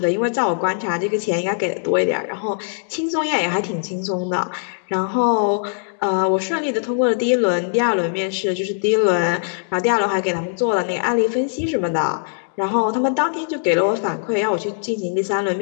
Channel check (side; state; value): right; silent; digital silence